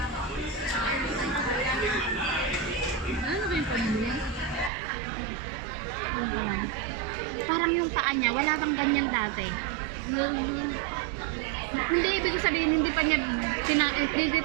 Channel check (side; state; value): left; drops out; at 4.7 s